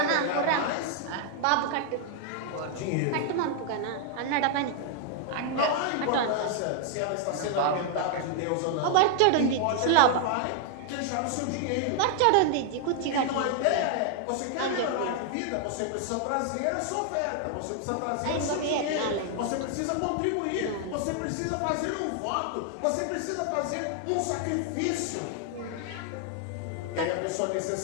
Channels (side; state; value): both; different; correlation 0.00